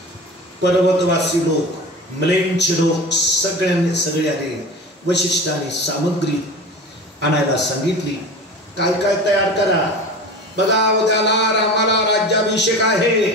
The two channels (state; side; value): normal; both; correlation 0.33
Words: पर्वतवासी लोक, म्लेंच लोक सगळे आले. वशिष्ठाने सामग्री आणायला सांगितली. काय काय तयार करा. बघा उद्याला रामाला राज्याभिषेक आहे.